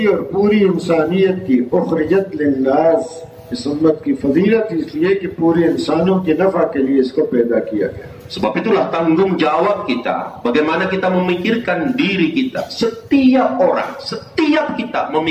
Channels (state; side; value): identical; both; correlation 1.00